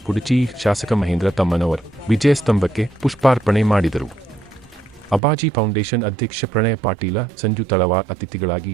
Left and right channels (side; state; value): left; drops out; at 5.2 s